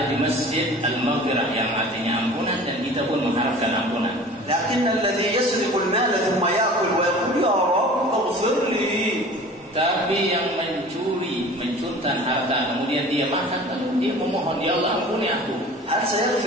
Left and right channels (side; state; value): both; normal; correlation 0.43